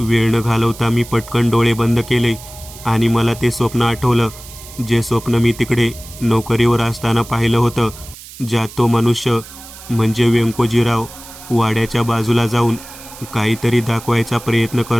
न घालवता मी पटकन डोळे बंद केले आणि मला ते स्वप्न आठवलं. जे स्वप्न मी तिकडे नोकरीवर असताना पाहिलं होतं, ज्यात तो मनुष्य म्हणजे व्यंकोजीराव वाड्याच्या बाजूला जाऊन काहीतरी दाखवायचा प्रयत्न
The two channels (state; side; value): noise; right; hiss, 17 dB below the sound